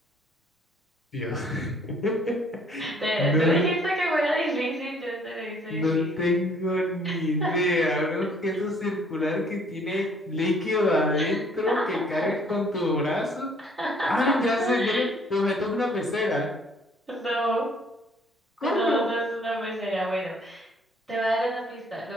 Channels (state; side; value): normal; both; correlation 0.60